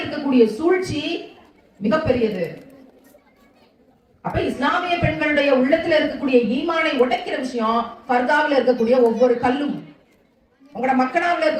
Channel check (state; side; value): identical; both; correlation 1.00